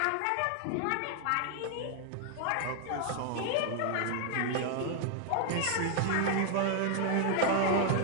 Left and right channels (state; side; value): different; both; correlation 0.00